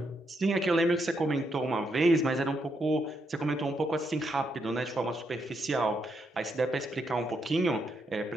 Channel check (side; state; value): both; normal; correlation 0.79